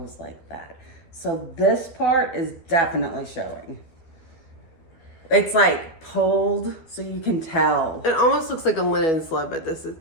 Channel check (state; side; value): late; right; 12 ms